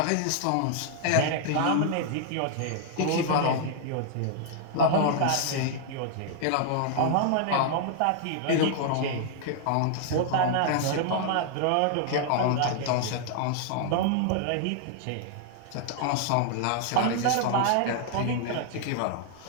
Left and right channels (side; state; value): both; different; correlation -0.01